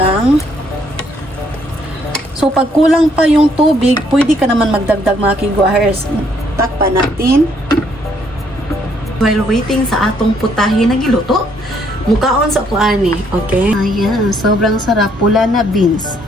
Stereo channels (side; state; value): both; normal; correlation 0.68